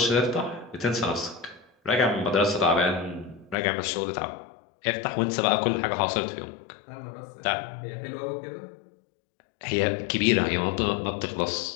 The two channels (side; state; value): right; drops out; at 3.6 s